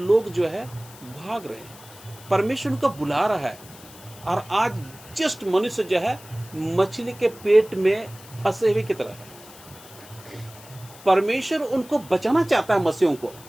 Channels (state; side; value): noise; left; hiss, 20 dB below the sound